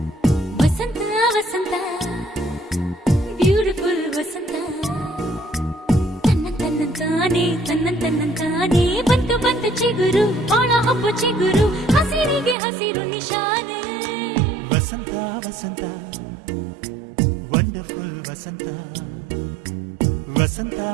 ವಸಂತ ವಸಂತ beautiful ವಸಂತ ತನ್ನಂತಾನೆ ಬಂತು ಬಂತು ಚಿಗುರು ಒಳ ಹಬ್ಬ ಚಿಗುರು ಹಸಿರಿಗೆ ಹಸಿರು ನಿಶಾನೆ ವಸಂತ ವಸಂತ ವಂಡರ್ಫುಲ್ ವಸಂತ ವಸಂತ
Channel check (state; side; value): drops out; left; at 12.6 s